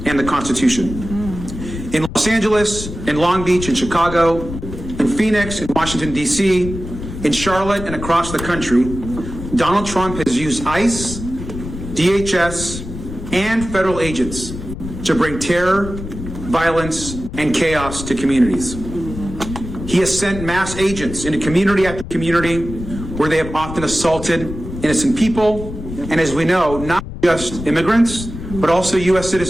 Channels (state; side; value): noise; left; rumble, 9 dB below the sound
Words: the Constitution. In Los Angeles, in Long Beach, in Chicago, in Phoenix, in Washington, D.C., in Charlotte, and across the country, Donald Trump has used ICE, DHS, and federal agents to bring terror, violence, and chaos to communities. He has sent mass agents into community after community where they have often assaulted innocent people, and as we know, not just immigrants, but also U.S.